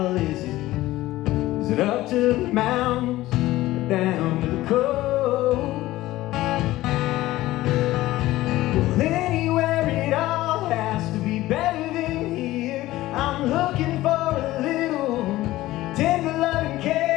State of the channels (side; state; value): right; quieter; 16.6 dB